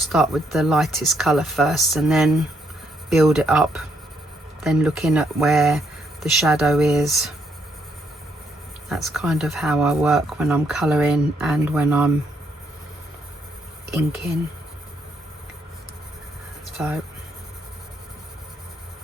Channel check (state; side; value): normal; both; correlation 0.74